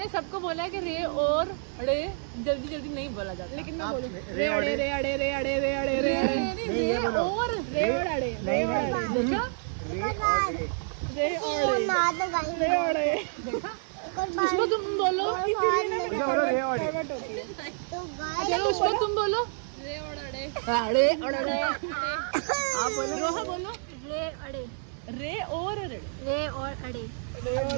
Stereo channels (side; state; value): left; silent; digital silence